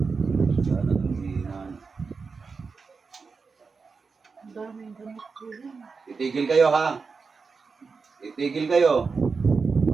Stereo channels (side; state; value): left; quieter; 4.8 dB